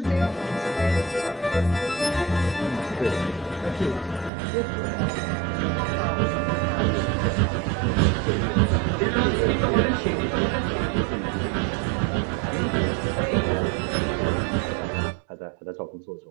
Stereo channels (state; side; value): drops out; left; at 4.3 s